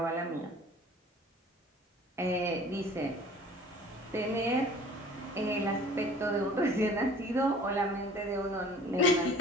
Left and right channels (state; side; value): normal; both; correlation 0.48